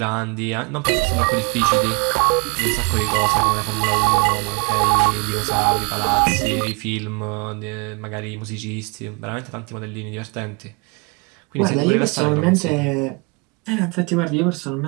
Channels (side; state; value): left; quieter; 30.0 dB